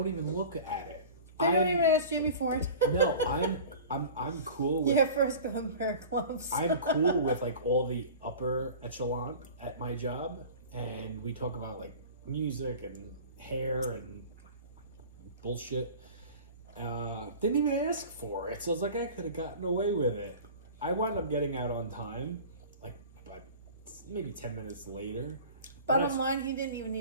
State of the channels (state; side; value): inverted; both; correlation -0.39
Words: even look at it. They don't even ask Jamie for it. No, I'm cool with. Yeah, first go and wear gloves. I'm cool with like all the upper echelon at my job, and we talk about like music and hair and bullshit. Didn't even ask for it, so I was like, I could have gotten away with it. I wound up getting out on time, like maybe 10 minutes later. Bottom line, he didn't even